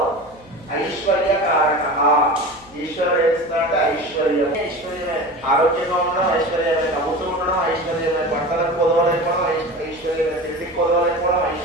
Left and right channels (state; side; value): noise; left; hum, 25 dB below the sound